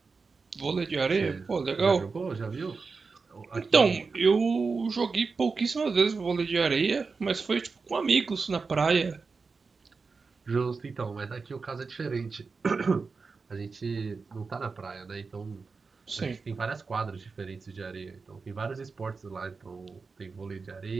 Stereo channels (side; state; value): left; quieter; 4.6 dB